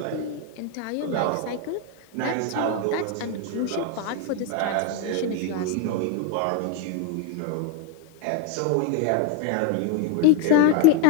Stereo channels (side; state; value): both; different; correlation 0.01